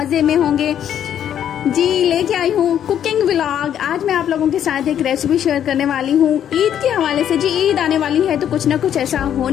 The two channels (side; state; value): right; quieter; 9.8 dB